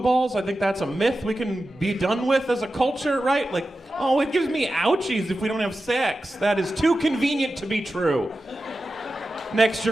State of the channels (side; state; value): both; normal; correlation 0.92